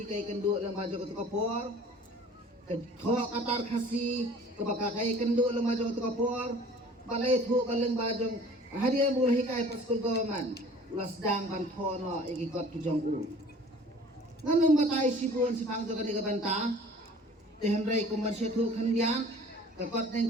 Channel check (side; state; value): both; normal; correlation 0.48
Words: kai kendu lang bajo ke kapor ke tho katar khasi ke baka kai kendu lang bajo ke kapor balai thu kaleng bajo hadiah bola hikai pa school government ulas sedang ban thono ikikot kijong nganum batai sibun sipang joga ni banta tehenrai komersial thu khandian kakot